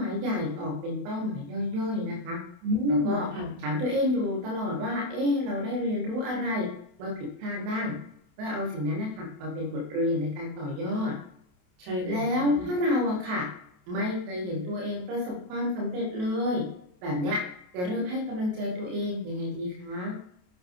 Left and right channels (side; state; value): left; late; 28 ms